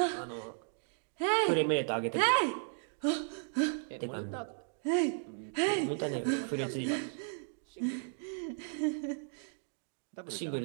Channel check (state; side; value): silent; left; digital silence